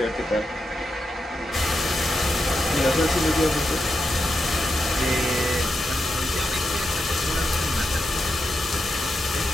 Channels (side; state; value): both; normal; correlation 0.86